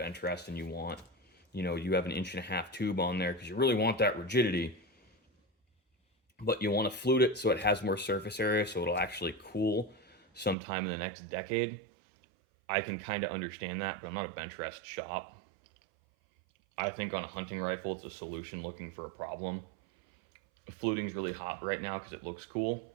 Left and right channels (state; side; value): drops out; left; at 10.6 s